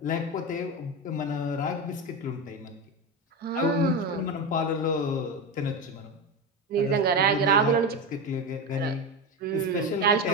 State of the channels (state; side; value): normal; both; correlation 0.18